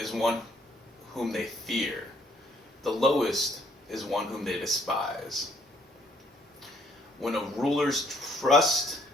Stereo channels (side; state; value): both; normal; correlation 0.66